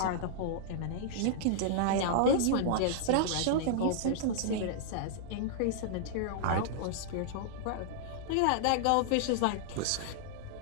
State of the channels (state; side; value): different; both; correlation -0.01